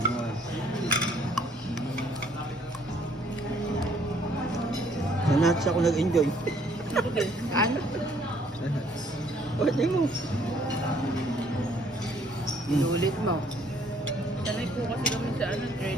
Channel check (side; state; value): both; normal; correlation 0.63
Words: Sa nuts ako nag-enjoy. Ano? Pwede mo. Inulit mo. Sanay po kasi kami sa